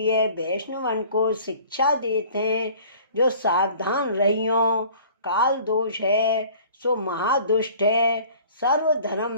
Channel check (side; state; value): both; inverted; correlation -0.49